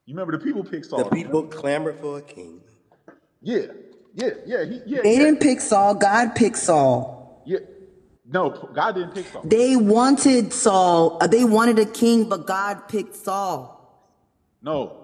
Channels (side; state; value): both; identical; correlation 1.00